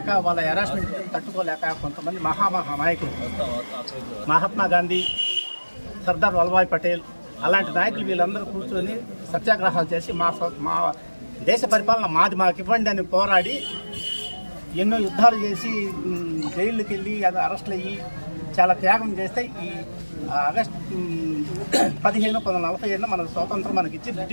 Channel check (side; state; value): both; inverted; correlation -1.00